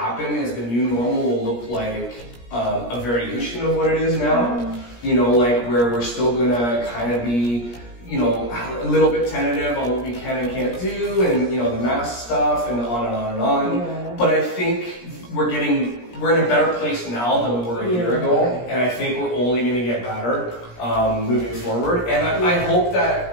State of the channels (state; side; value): late; right; 17 ms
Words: is the new normal will look like a variation of what it is now. You know, like, where we're still gonna kind of be, you know, a little bit tentative on what we can and can't do, and, you know, the mask stuff, and on and on and on. But I think we're in a better place now than we were a year ago, and I think we're only going to get better moving forward. And I hope